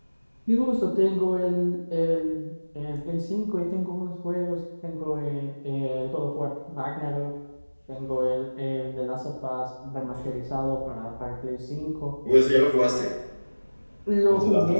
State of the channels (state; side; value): inverted; both; correlation -1.00